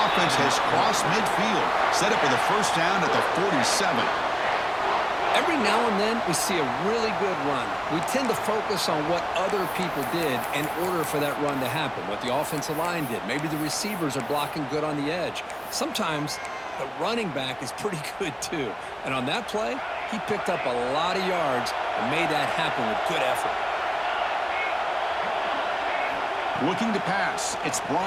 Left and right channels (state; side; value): identical; both; correlation 1.00